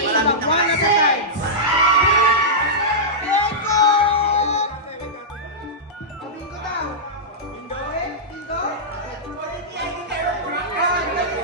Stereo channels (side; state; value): both; normal; correlation -0.13